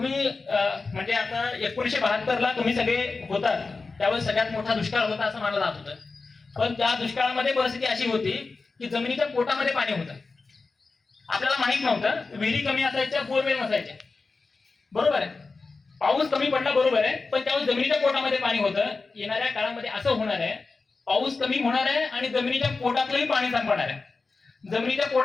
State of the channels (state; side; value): quieter; right; 4.0 dB